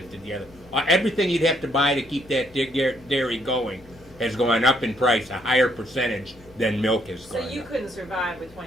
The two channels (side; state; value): both; normal; correlation 0.70